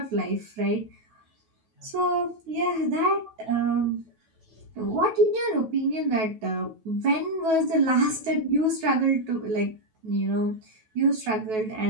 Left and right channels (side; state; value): left; late; 9.2 ms